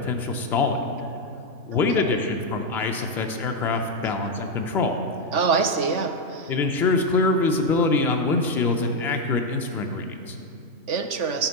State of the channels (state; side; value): late; left; 3.5 ms